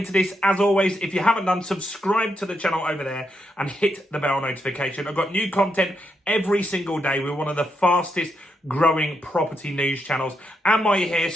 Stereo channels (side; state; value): both; normal; correlation 0.81